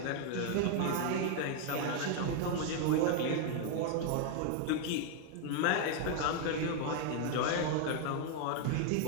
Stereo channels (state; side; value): different; both; correlation 0.01